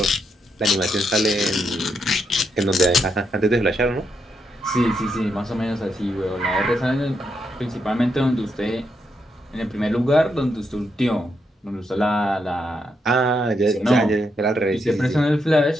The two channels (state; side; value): normal; both; correlation 0.80